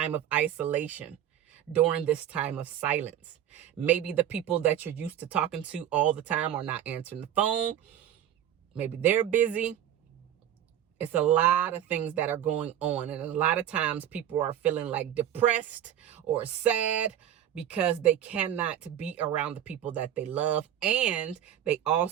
of isolation, during this time of silence. Maybe the people that you're used to talking to all the time are not answering the phone. Maybe they're busy. It's a lot of things that are going on. And a lot of times people are feeling like depressed or sad because they cannot be around the people that they love. And they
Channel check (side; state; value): left; quieter; 10.7 dB